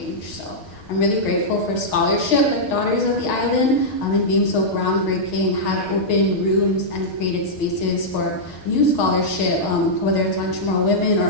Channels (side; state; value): right; late; 6.5 ms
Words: So I'm really grateful for scholarship like Daughters of the Island, and being so groundbreaking, have opened rooms and created spaces for new scholarship, whether it's on Chamorro women